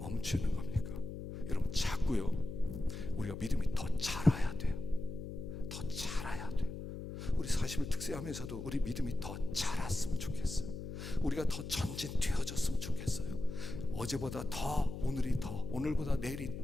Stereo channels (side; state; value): left; noise; hum, 8 dB below the sound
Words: 겁니까? 여러분, 자꾸요 우리가 믿음이 더 자라야 돼요. 더 자라야 돼요. 우리 40일 특세하면서도 우리 믿음이 더 자랐으면 좋겠어요. 우리가 더 전진되어졌으면 좋겠어요. 어제보다 더, 오늘이 더, 오늘보다 내일이